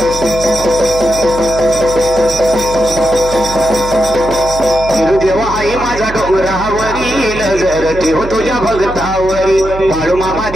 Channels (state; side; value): noise; right; hum, 11 dB below the sound